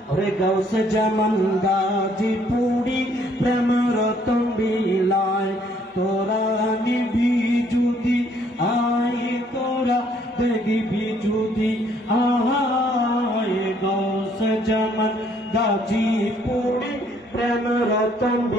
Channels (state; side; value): normal; both; correlation 0.65